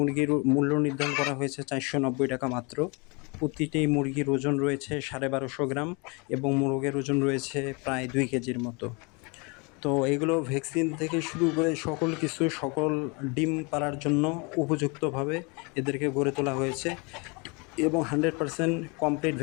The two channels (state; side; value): quieter; right; 30.3 dB